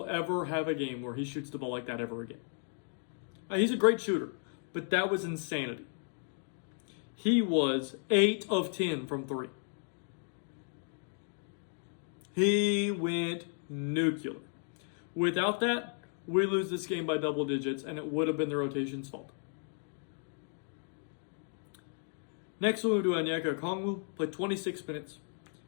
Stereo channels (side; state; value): right; silent; 55 dB below the other